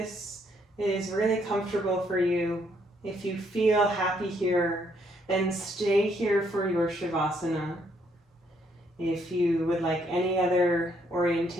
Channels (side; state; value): both; normal; correlation 0.71